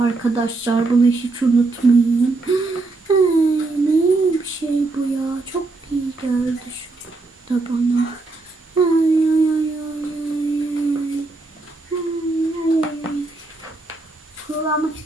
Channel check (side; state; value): left; quieter; 3.4 dB